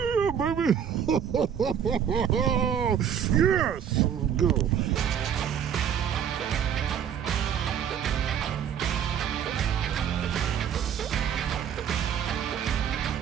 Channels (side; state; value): left; quieter; 8.5 dB